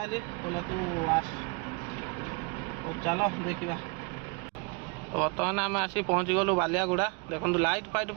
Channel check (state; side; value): quieter; left; 30.4 dB